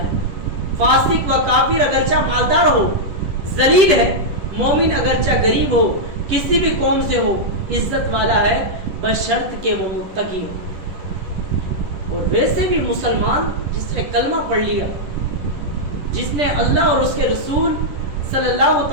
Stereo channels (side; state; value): left; late; 10 ms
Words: فاسق و کافر اگرچہ مالدار ہو ذلیل ہے، مومن اگرچہ غریب ہو کسی بھی قوم سے ہو عزت والا ہے، بشرط کہ وہ متقی ہو. اور ویسے بھی مسلمان جس نے کلمہ پڑھ لیا، جس نے اللہ اور اس کے رسول صلی اللہ